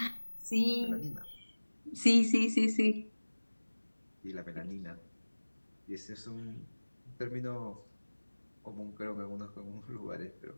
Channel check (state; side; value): inverted; both; correlation -1.00